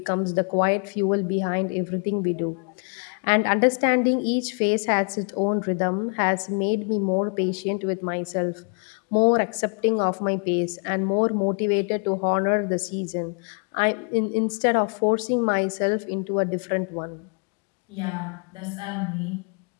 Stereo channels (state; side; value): quieter; right; 39.2 dB